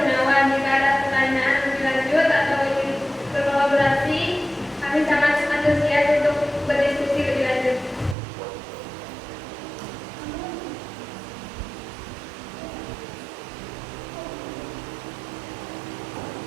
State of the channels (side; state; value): left; drops out; at 8.2 s